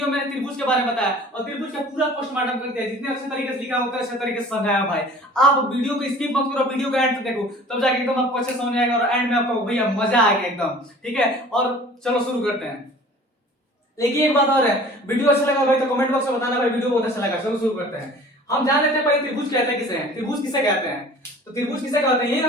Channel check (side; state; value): both; normal; correlation 0.46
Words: में त्रिभुज के बारे में बताया और त्रिभुज का पूरा पोस्टमार्टम करते हैं। जितने अच्छे तरीके से लिखा होता है अच्छे तरीके से समझाया भाई। आप वीडियो को स्किप मत करो, वीडियो को एंड तक देखो, तब जाके एकदम आपको अच्छे समझ आएगा और एंड में आपको भैया मजा आएगा एकदम। ठीक है, और चलो शुरू करते हैं। लेकिन एक बात और है, वीडियो अच्छा लगा भाई तो कमेंट बॉक्स में बताना भाई वीडियो बहुत अच्छा लगा। चलो शुरू करते हैं। हम जान लेते हैं पहले त्रिभुज कहते हैं किसे हैं। त्रिभुज किसे कहते हैं? तो त्रिभुज किसे कहते हैं? ये